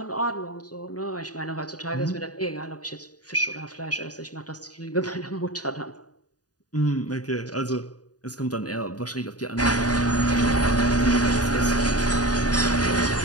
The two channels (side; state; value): right; late; 0.68 ms